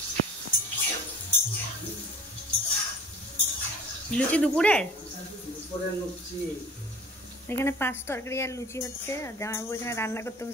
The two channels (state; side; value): normal; both; correlation 0.44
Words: লুচি দুপুরের এখানে 5 তরকারি আর লুচি হচ্ছে। আর জামাইবাবু এখানে রান্না করতে